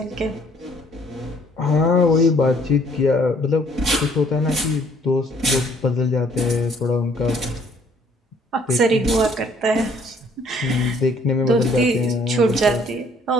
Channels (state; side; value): normal; both; correlation 0.61